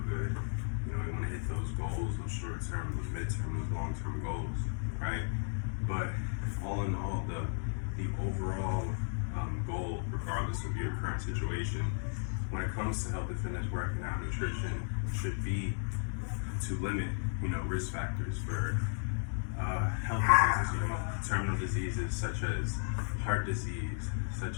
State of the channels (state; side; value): silent; right; digital silence